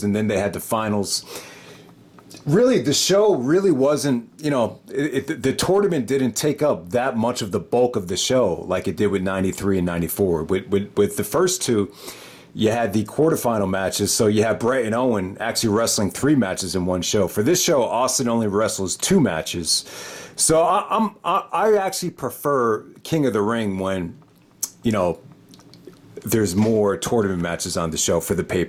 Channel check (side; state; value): both; identical; correlation 1.00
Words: and then they had the finals. Really, the show really wasn't, the tournament didn't take up that much of the bulk of the show like it did with 93 and 94. With the first two, you had the quarterfinal matches. So you had Bret and Owen actually wrestling 3 matches in one show. For this show, Austin only wrestles 2 matches. So I actually prefer King of the Ring when, there's more tournament matches on the show for the